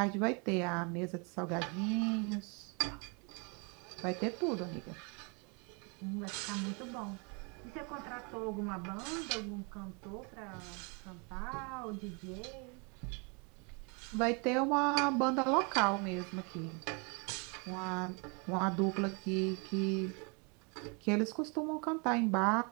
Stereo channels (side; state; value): left; quieter; 33.2 dB